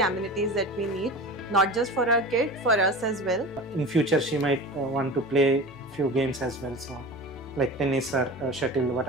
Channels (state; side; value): normal; both; correlation 0.32